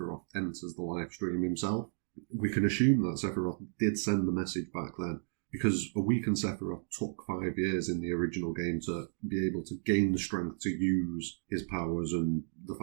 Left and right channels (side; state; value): left; silent; digital silence